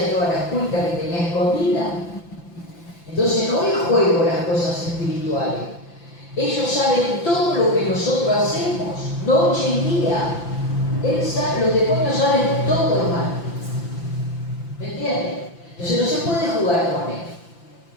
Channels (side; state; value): right; late; 5.9 ms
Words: todas las cuentas que tenía escondidas. Entonces no es juego las cosas espirituales. Ellos saben todo lo que nosotros hacemos, noche y día. Los demonios saben todo, hermano. ¿Me entiendes? Entonces no se puede jugar con él.